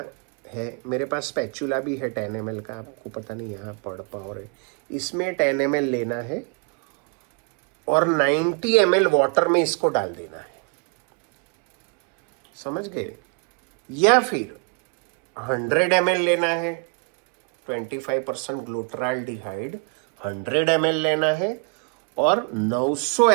है, मेरे पास स्पैचुला भी है 10 ml का, आपको पता नहीं यहाँ पढ़ पाओ रहे। इसमें 10 ml लेना है और 90 ml वाटर में इसको डाल देना है, समझ गए? या फिर 100 ml लेना है, 25% ग्लूट्राल्डिहाइड 100 ml लेना है और 900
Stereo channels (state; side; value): quieter; left; 35.1 dB